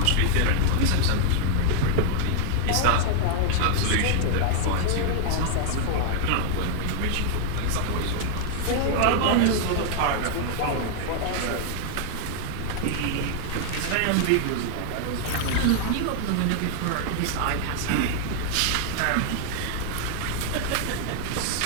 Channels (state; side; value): different; both; correlation 0.00